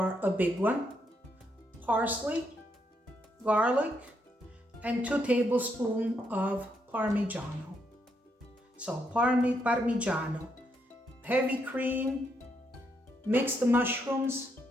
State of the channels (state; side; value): normal; both; correlation 0.77